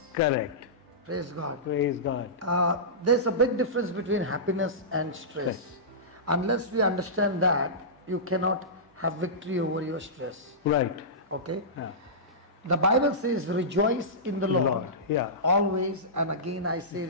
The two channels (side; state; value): both; normal; correlation -0.18